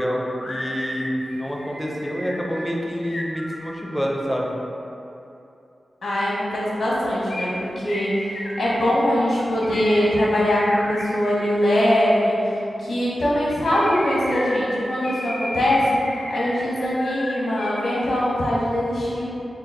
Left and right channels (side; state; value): both; normal; correlation 0.92